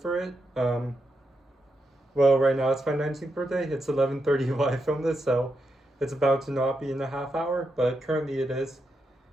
it. Well, right now it's my 19th birthday. It's 11:30 while I film this, so it's about to not be in a half hour, but currently it is.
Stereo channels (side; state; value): both; normal; correlation 0.84